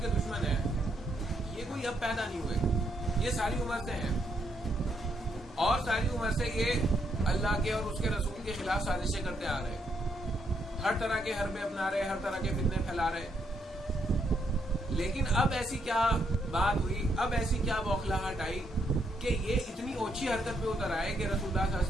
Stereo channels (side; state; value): both; normal; correlation 0.76